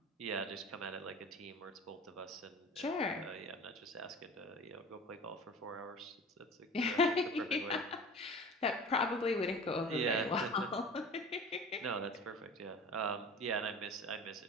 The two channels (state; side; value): normal; both; correlation 0.39